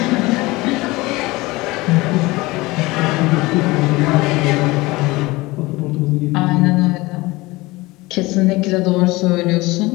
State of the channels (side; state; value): right; quieter; 21.5 dB